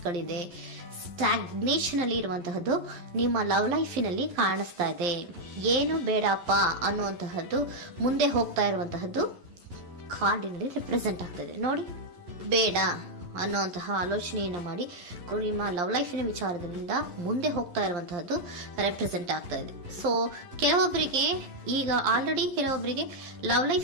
ಸ್ಟಾಗ್ನೇಷನ್ ಅಲ್ಲಿ ಇರುವಂತಹದ್ದು ನಿಮ್ಮ ಲವ್ ಲೈಫಿನಲ್ಲಿ ಕಾಣಿಸ್ತಾ ಇದೆ. ಏನು ಬೇಡಪ್ಪ ಅನ್ನುವಂತಹದ್ದು ಮುಂದೆ ಹೋಗ್ತಾ ಇರುವಂತಹದ್ದು ಕಾರ್ಡಿನಲ್ಲಿ ರೆಪ್ರೆಸೆಂಟ್ ಆಗ್ತದೆ. ನೋಡಿ, ಬೇಡ ಅನ್ನುವಂತಹ ಆಲೋಚನೆಯನ್ನು ಮಾಡಿ ನಿಮ್ಮ ಲವ್ ಲೈಫಿನ ವಿಚಾರದಿಂದ ಮುಂದೆ ಹೋಗ್ತಾ ಇರುವಂತಹದ್ದು ರೆಪ್ರೆಸೆಂಟ್ ಆಗ್ತಾ ಇದೆ. ಸೊ ಕೆಲವೊಬ್ಬರಿಗೆ ಈಗ ಆಲ್ರೆಡಿ ಕೆಲವೊಬ್ಬರಿಗೆ ಲವ್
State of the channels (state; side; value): late; left; 11 ms